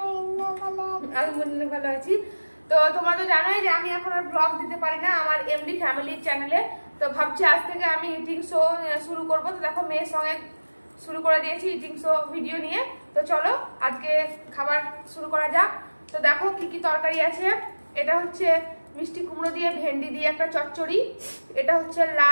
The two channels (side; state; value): both; inverted; correlation -1.00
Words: আলহামদুলিল্লাহ ভালো আছি। তো তোমরা তো জানোই যে আমি এখন আর ব্লগ দিতে পারি না আমার এমডি ফ্যামিলি চ্যানেলে। তো ভাবছি আজ থেকে আমি ইটিং শো শুরু করব। তো দেখো মেয়ের সঙ্গে শুরু করে দিয়েছি ইটিং শো ভিডিও নিয়ে। তো চলো আজকে খাবার শুরু করা যাক। তো দেখো কি কি তরকারি আছে। এটা হচ্ছে মিষ্টি কুমড়ো দিয়ে ভেন্ডি দিয়ে একটা চচ্চড়ি। এটা হচ্ছে